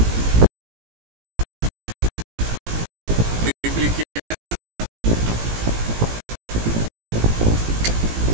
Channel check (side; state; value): left; late; 18 ms